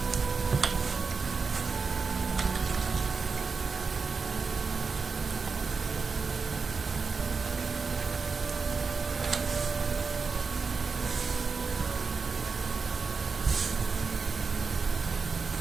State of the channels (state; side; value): quieter; left; 4.9 dB